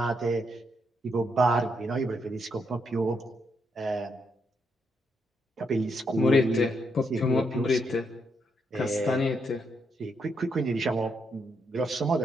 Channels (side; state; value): both; normal; correlation 0.78